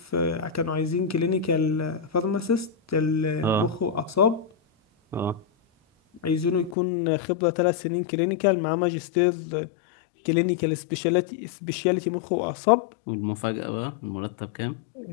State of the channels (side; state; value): right; drops out; at 6.8 s